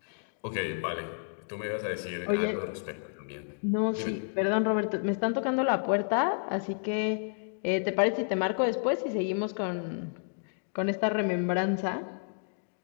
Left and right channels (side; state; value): right; silent; digital silence